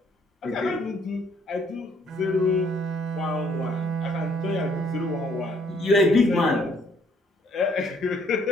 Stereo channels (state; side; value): normal; both; correlation 0.65